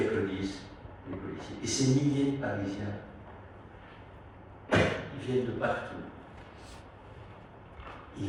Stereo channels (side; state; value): both; identical; correlation 1.00